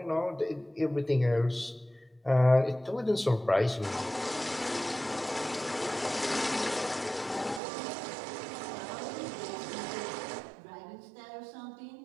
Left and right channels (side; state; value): left; drops out; at 7.6 s